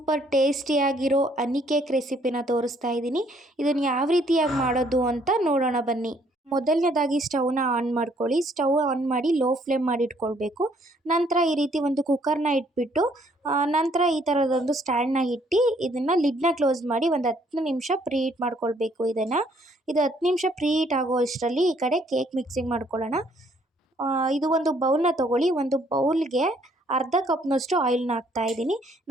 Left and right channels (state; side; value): normal; both; correlation 0.65